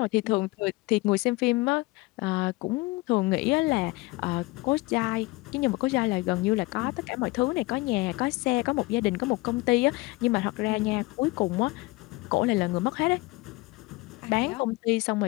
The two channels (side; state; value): right; quieter; 22.7 dB